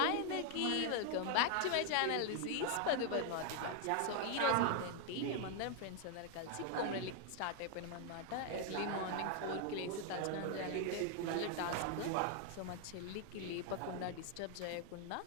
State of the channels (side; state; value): both; different; correlation 0.01